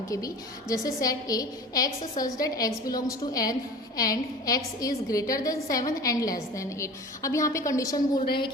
के भी, जैसे set A, x such that x belongs to N and x is greater than 7 and less than 8। अब यहाँ पे कंडीशन बोल रहे हैं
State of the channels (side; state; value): both; normal; correlation 0.38